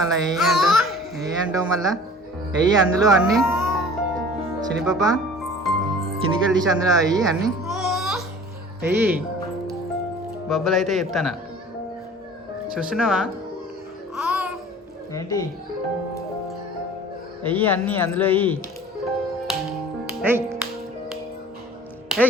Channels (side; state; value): both; normal; correlation 0.45